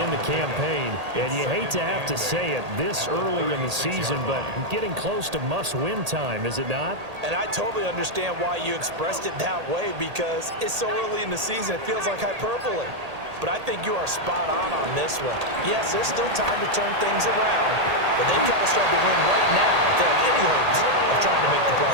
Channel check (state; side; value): late; left; 1.8 ms